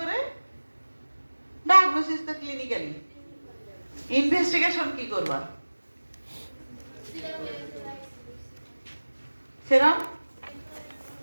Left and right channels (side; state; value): both; inverted; correlation -1.00